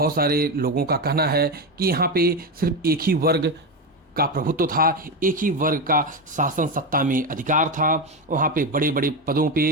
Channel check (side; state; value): both; normal; correlation 0.14